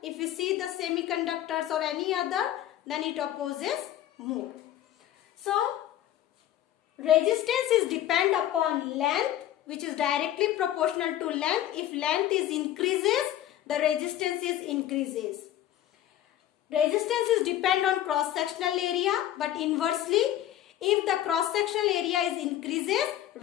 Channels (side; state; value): right; quieter; 12.4 dB